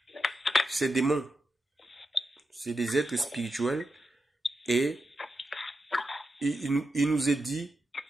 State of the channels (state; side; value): normal; both; correlation 0.88